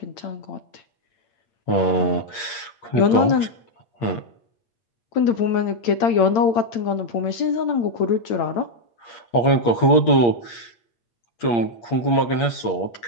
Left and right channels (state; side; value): late; right; 8.6 ms